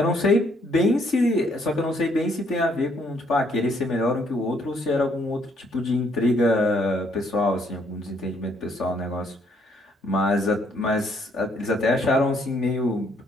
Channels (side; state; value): both; normal; correlation 0.68